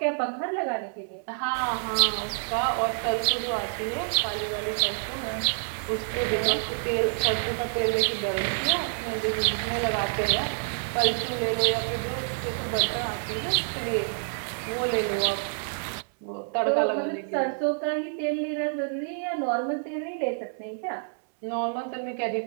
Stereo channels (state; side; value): silent; left; digital silence